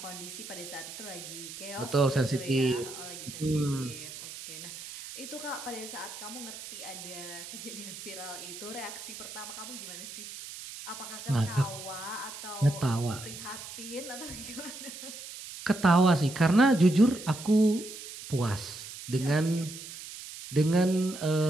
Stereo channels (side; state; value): right; noise; hiss, 11 dB below the sound